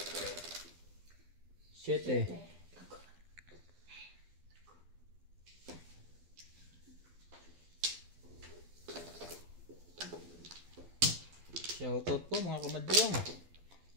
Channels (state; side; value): late; left; 12 ms